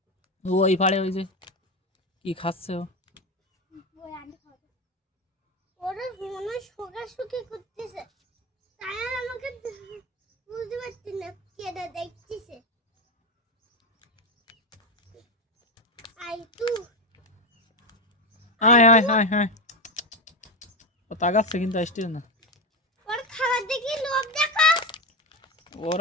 ও ওই পাড়ে ওই যে কি খাচ্ছে ও। আয়, আয়, আয়, আয়, ও তাকাচ্ছে কিন্তু আসছে না।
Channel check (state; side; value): normal; both; correlation 0.14